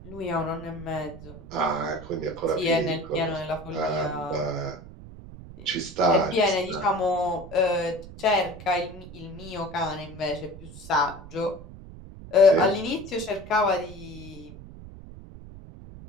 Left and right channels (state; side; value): noise; right; rumble, 15 dB below the sound